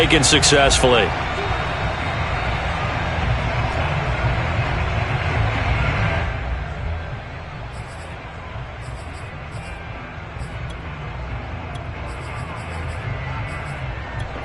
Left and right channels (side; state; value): both; identical; correlation 1.00